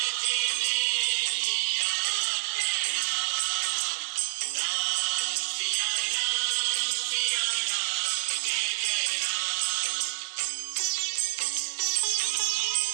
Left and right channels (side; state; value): left; silent; digital silence